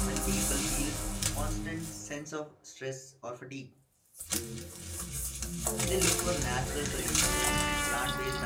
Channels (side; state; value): both; identical; correlation 1.00